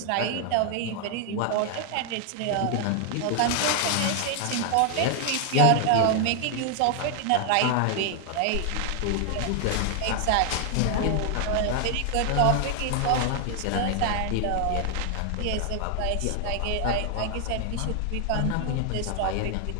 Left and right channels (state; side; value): different; both; correlation 0.00